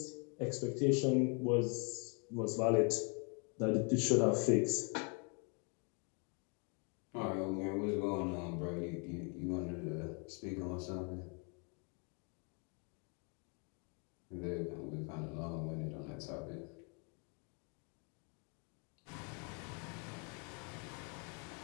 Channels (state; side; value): quieter; right; 36.6 dB